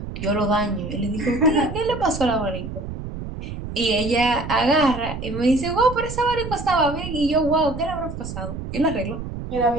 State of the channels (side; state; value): right; noise; rumble, 8 dB below the sound